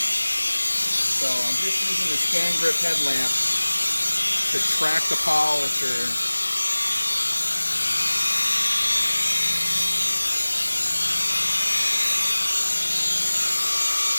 So I'm just using the scan grip headlamp to track the polisher.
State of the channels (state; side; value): inverted; both; correlation -1.00